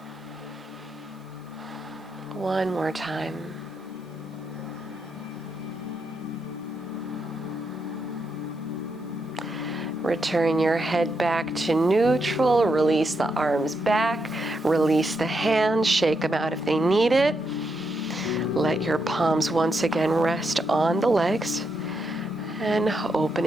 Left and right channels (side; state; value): both; normal; correlation 0.82